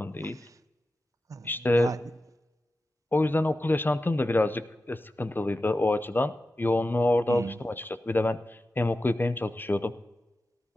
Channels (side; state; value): both; normal; correlation 0.92